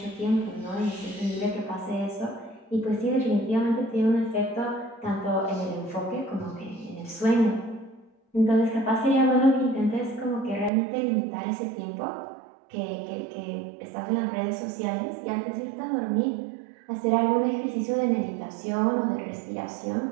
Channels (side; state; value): left; drops out; at 10.7 s